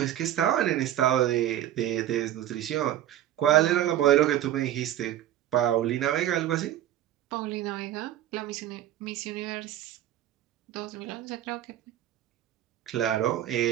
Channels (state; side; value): quieter; left; 12.3 dB